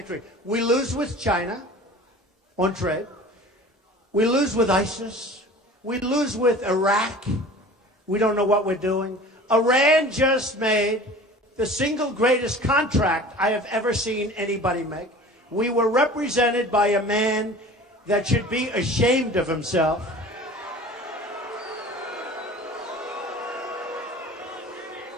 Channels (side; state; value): both; normal; correlation 0.42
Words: We lose with China on trade. We lose with ISIS. We lose with Iraq. We don't know what we're doing. Iran just made the single greatest contract I have ever seen anybody make. We were represented by a man that should be ashamed of himself.